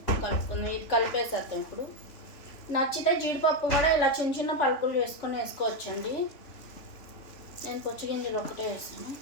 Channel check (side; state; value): right; late; 3.4 ms